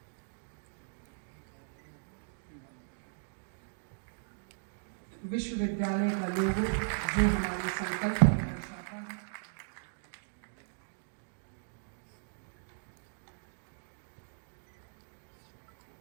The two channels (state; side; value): silent; left; digital silence